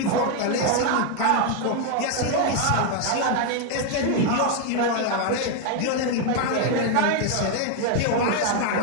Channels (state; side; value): different; both; correlation 0.01